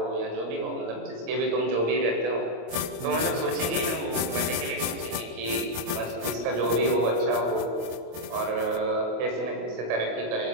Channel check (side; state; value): left; late; 25 ms